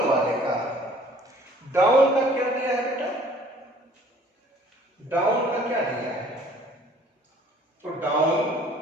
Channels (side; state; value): both; normal; correlation 0.54